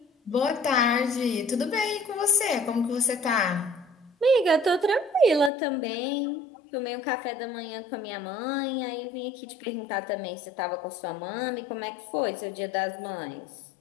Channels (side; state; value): right; drops out; at 5.5 s